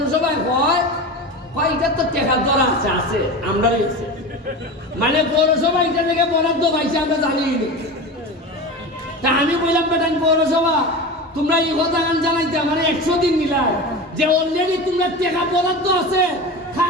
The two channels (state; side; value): normal; both; correlation 0.28